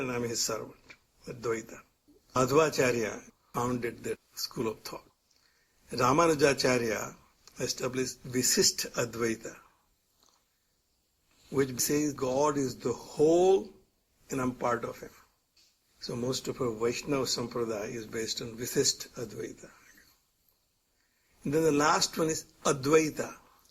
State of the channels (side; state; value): both; identical; correlation 1.00